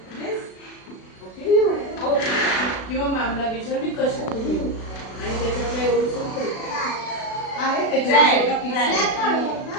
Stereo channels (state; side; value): late; right; 36 ms